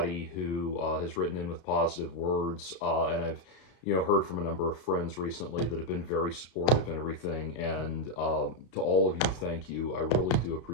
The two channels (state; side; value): late; right; 32 ms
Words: who has written in with positive words, and I've heard from a number of friends recently that have been very supportive and everything. And to all of you, thank you. I really do